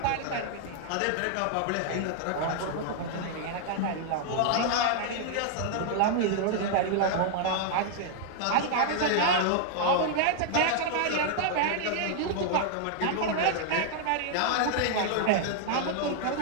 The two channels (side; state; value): both; different; correlation 0.00